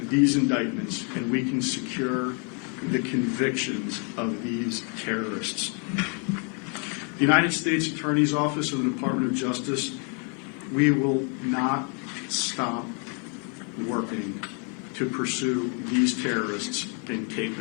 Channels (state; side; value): quieter; right; 38.0 dB